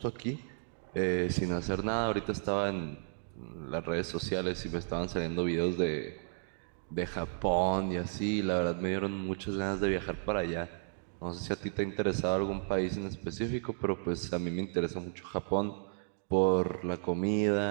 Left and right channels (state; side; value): silent; left; digital silence